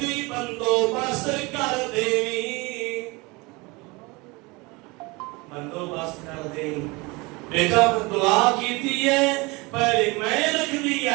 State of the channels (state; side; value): quieter; left; 25.1 dB